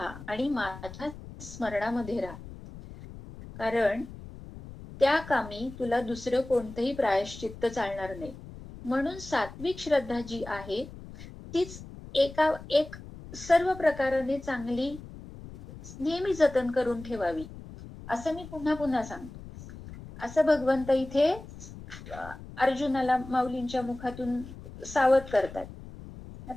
आणि माझ्या स्मरणामध्ये राहा, कारण त्या कामी तुला दुसरं कोणतंही प्रायश्चित्त चालणार नाही. म्हणून सात्विक श्रद्धा जी आहे तीच एक सर्व प्रकाराने चांगली नेहमी जतन करून ठेवावी, असं मी पुन्हा पुन्हा सांगतो. असं भगवंत इथे अर्जुनाला माऊलींच्या मुखातून सावध करतात.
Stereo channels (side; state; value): left; noise; rumble, 15 dB below the sound